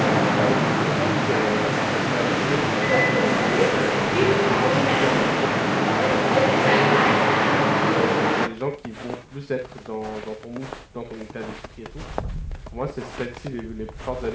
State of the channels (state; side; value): identical; both; correlation 1.00